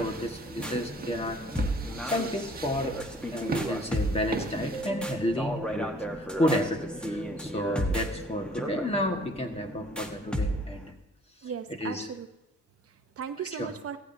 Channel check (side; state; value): both; normal; correlation 0.56